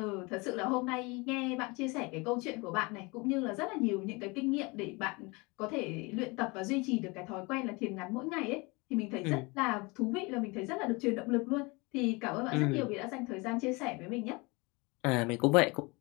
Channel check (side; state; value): right; quieter; 26.6 dB